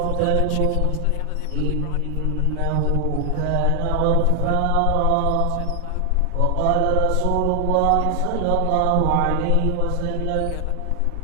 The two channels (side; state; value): both; different; correlation 0.00